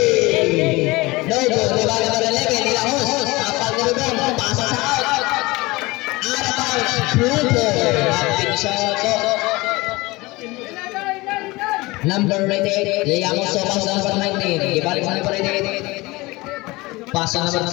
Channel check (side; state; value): right; quieter; 22.0 dB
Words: No good. Diba number 11, nila host. Apal ni Rubén. Pasa sa out. Out of bounds. Pluto. Rapid shot. Number 88, Yayamos Sopas number 19. Ibalik sa number 88. Pasa